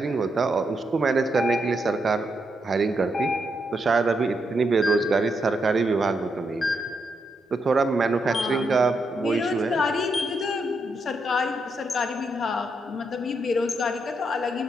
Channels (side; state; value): both; normal; correlation 0.81